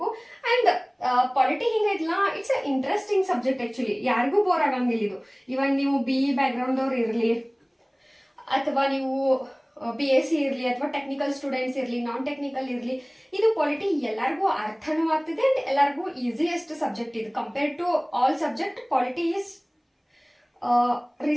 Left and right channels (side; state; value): both; identical; correlation 1.00